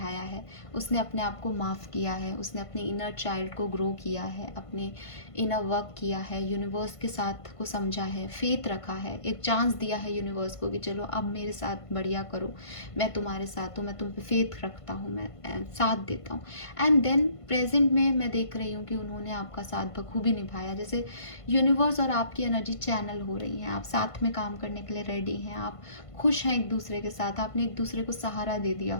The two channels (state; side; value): late; right; 1.5 ms